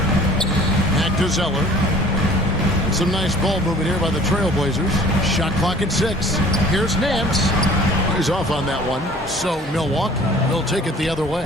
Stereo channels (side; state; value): both; normal; correlation 0.50